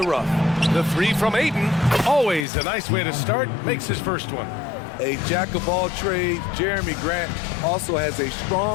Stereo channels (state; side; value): drops out; right; at 2.5 s